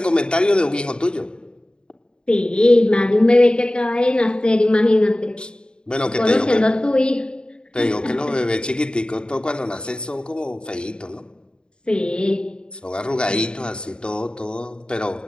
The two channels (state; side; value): late; right; 0.050 ms